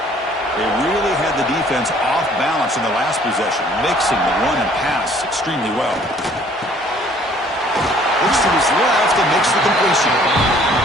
They really had the defense off balance in the last possession, mixing the run and pass extremely well. Looks to his left and makes the completion.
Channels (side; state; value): both; normal; correlation 0.57